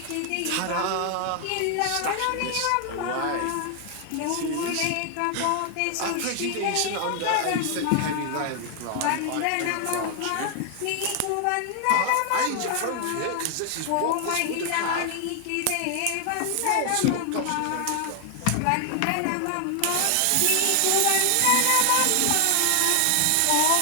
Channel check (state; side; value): different; both; correlation 0.00